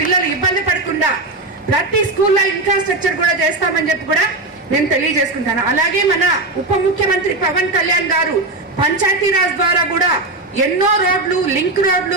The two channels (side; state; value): left; quieter; 3.2 dB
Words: ఇబ్బంది పడకుండా ప్రతి స్కూల్లో ఇన్ఫ్రాస్ట్రక్చర్ కూడా చేస్తామని చెప్పి కూడా నేను తెలియజేసుకుంటాను. అలాగే మన ఉప ముఖ్యమంత్రి పవన్ కళ్యాణ్ గారు పంచాయతీరాజ్ ద్వారా కూడా ఎన్నో రోడ్లు, లింక్ రోడ్లు,